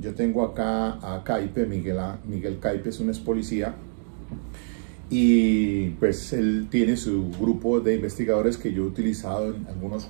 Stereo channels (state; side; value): silent; left; digital silence